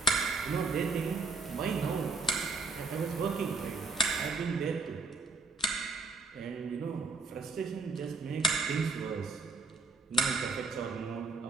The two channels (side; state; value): left; quieter; 3.8 dB